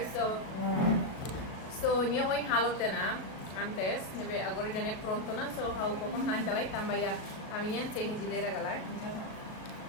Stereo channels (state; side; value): late; right; 37 ms